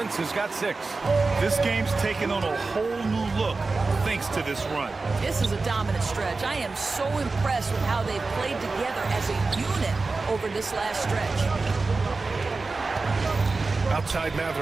has got 6. This game's taken on a whole new look thanks to this run. This is a dominant stretch. I am so impressed with how they've played together as a unit over this last stretch. Outside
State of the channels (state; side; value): quieter; left; 3.8 dB